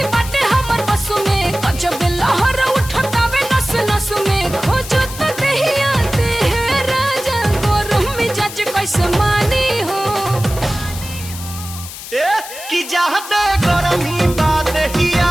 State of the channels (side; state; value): left; noise; hiss, 12 dB below the sound